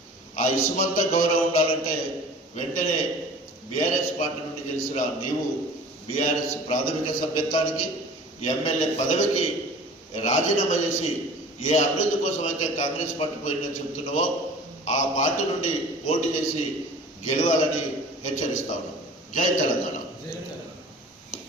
ఆ ఇసుమంత గౌరవం ఉండాలంటే వెంటనే బీఆర్ఎస్ పార్టీ నుండి గెలిచిన నీవు బీఆర్ఎస్ ప్రాథమిక సభ్యత్వానికి ఎమ్మెల్యే పదవికి రాజీనామా చేసి ఏ అభివృద్ధి కోసం అయితే కాంగ్రెస్ పార్టీ పోయిందని చెబుతున్నావో ఆ పార్టీ నుండి పోటీ చేసి గెలవాలని హెచ్చరిస్తా ఉన్నాం. జై తెలంగాణ.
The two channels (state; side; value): normal; both; correlation 0.43